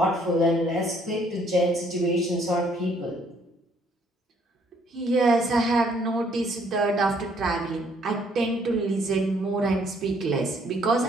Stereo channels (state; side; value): normal; both; correlation 0.65